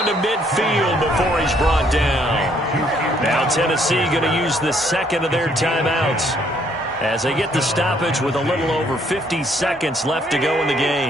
to midfield before he's brought down. Now Tennessee going to use the second of their timeouts as they get the stoppage with a little over 50 seconds left to go in the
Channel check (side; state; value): both; normal; correlation 0.67